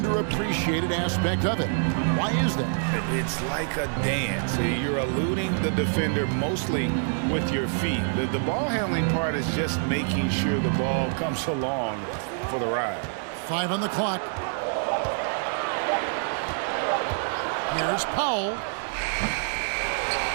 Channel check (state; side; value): silent; left; 61 dB below the other